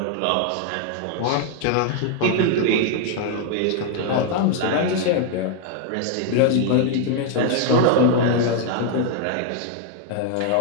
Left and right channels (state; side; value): different; both; correlation 0.00